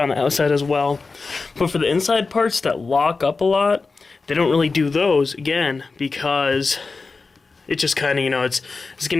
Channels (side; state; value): right; quieter; 4.1 dB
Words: the outside as well. But for the inside parts that lock up a lot, they don't really do those, again, because it just kind of, it's